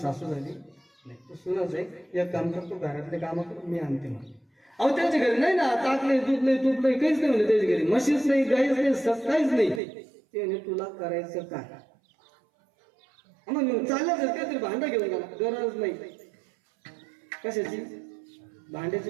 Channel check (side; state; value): left; drops out; at 9.8 s